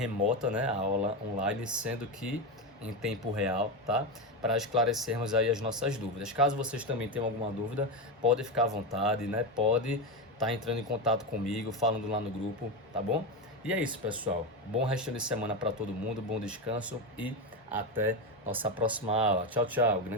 né, a aula online, sendo que em tempo real, tá? Para esclarecermos aí as nossas dúvidas. Caso vocês também tenham alguma dúvida, pode ficar à vontade, né? Pode estar entrando em contato comigo, falando lá no grupo, tá bom? E é isso, pessoal. Bom resto de semana para todo mundo, bom descanso e até nossa próxima aula. Tchau, tchau.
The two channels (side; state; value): both; normal; correlation 0.14